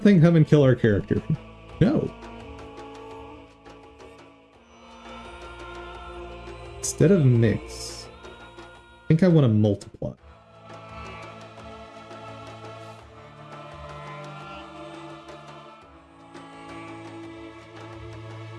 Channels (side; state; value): both; identical; correlation 1.00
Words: come and kill our character? No. Instead of mix, I think I want to multiply.